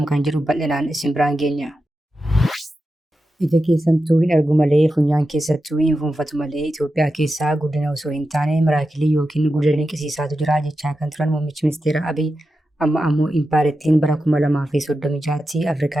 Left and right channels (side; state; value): both; normal; correlation 0.90